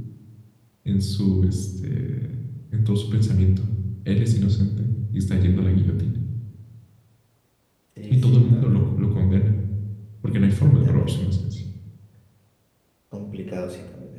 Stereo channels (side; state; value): both; identical; correlation 1.00